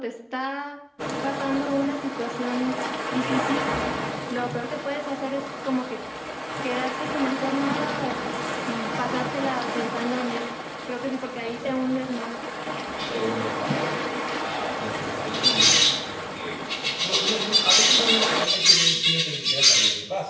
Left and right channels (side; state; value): both; identical; correlation 1.00